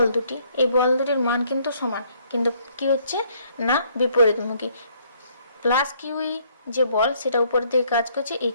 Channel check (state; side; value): inverted; both; correlation -0.65